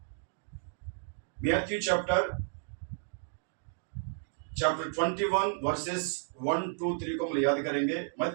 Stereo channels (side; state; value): left; silent; digital silence